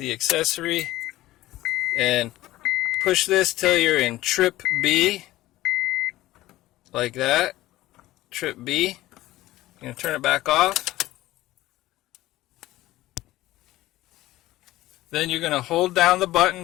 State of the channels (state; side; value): quieter; right; 16.6 dB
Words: accessory and push this till you're in trip B, like that, trip B. You're going to turn it back off. Then you're going to hold down the